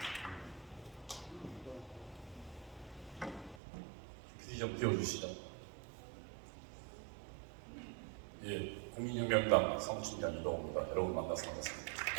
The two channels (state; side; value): drops out; left; at 3.6 s